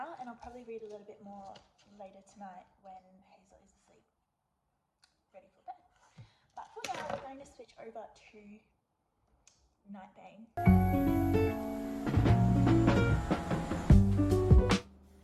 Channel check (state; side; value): identical; both; correlation 1.00